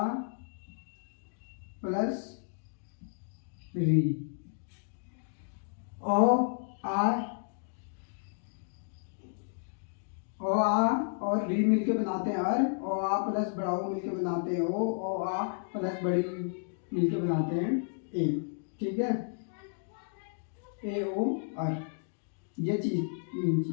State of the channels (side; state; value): right; silent; digital silence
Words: प्लस री। ओ आ और री मिलके बनाते हैं अर, ओ आ प्लस बड़ा ओ मिलके बनाते हैं ओ आ प्लस बड़ी मिलके बनाते हैं ए। ठीक है, ए ओ अर, ये चीज मेन